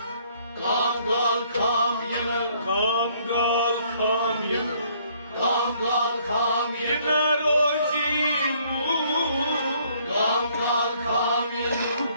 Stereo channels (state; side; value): inverted; both; correlation -0.64